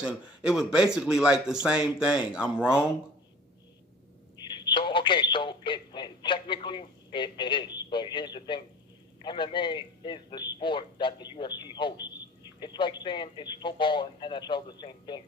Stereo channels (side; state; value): both; normal; correlation 0.43